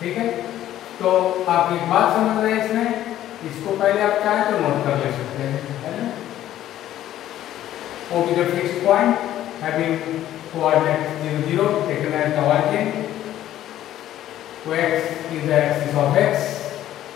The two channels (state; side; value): quieter; right; 12.7 dB